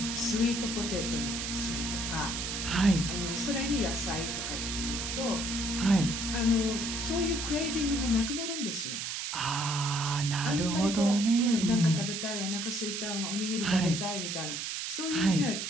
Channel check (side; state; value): right; noise; hiss, 3 dB below the sound